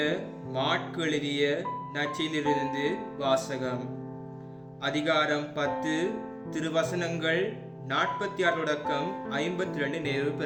மாற்கு எழுதிய நற்செய்தியிலிருந்து வாசகம். அதிகாரம் 10, திருவசனங்கள் 46 தொடக்கம் 52 நிறைவு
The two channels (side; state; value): both; identical; correlation 1.00